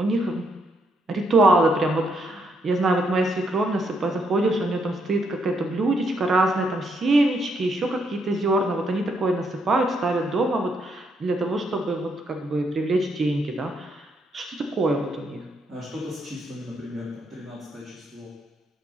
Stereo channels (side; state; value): both; normal; correlation 0.75